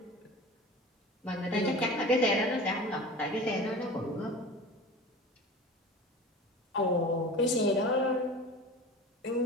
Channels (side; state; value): both; normal; correlation 0.36